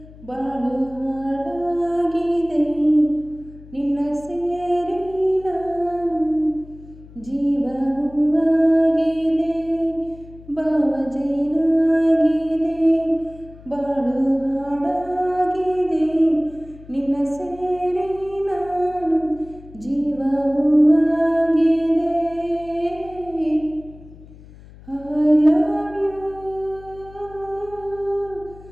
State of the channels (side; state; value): left; noise; hum, 20 dB below the sound